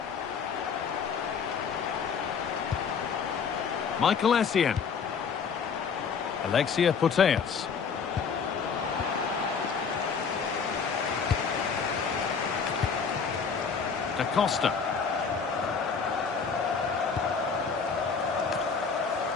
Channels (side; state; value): right; quieter; 5.9 dB